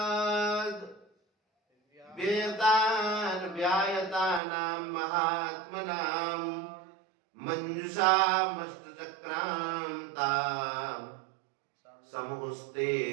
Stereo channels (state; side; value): drops out; left; at 4.4 s